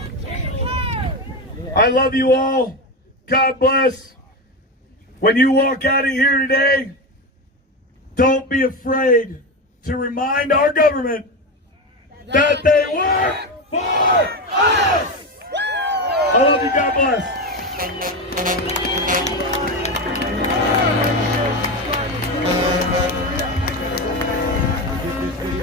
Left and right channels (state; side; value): normal; both; correlation 0.18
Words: I love you all. God bless. When you walk out of here today, don't be afraid to remind our government that they work for us. I love you. God bless.